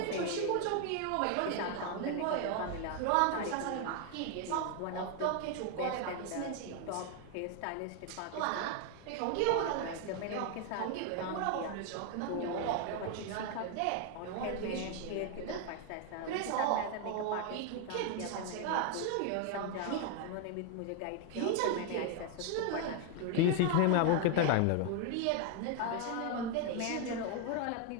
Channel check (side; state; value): both; different; correlation 0.01